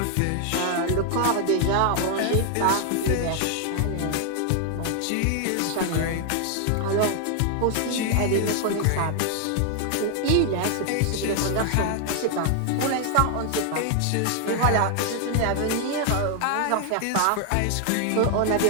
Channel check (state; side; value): different; both; correlation 0.00